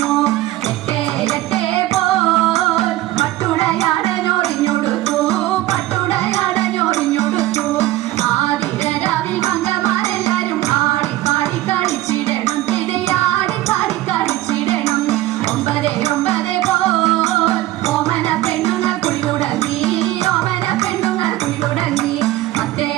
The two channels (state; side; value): quieter; left; 16.2 dB